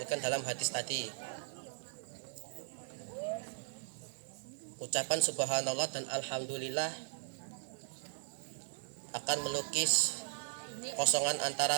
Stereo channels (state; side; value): silent; left; digital silence